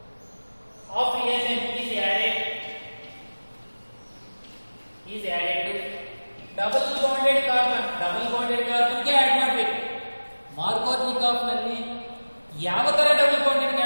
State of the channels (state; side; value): inverted; both; correlation -1.00